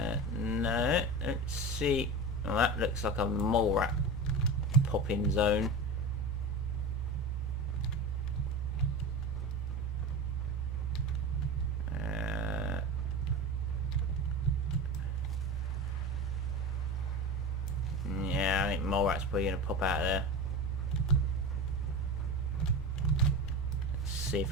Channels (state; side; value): normal; both; correlation 0.27